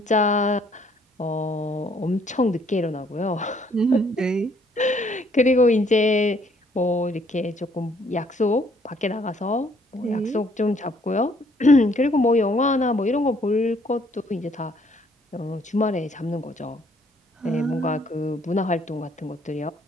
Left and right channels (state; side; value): normal; both; correlation 0.65